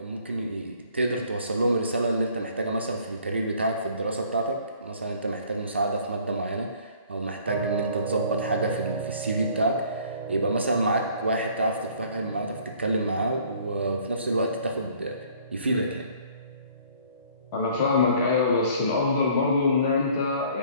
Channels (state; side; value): inverted; both; correlation -0.56